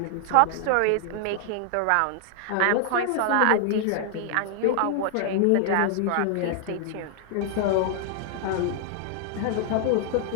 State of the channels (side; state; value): both; different; correlation 0.00